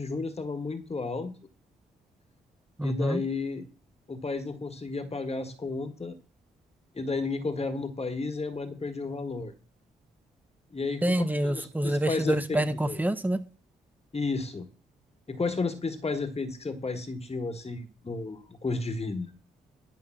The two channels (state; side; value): normal; both; correlation 0.82